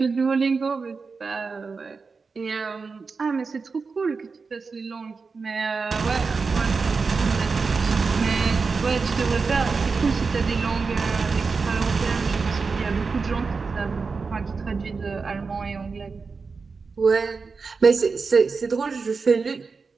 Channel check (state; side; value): quieter; left; 4.7 dB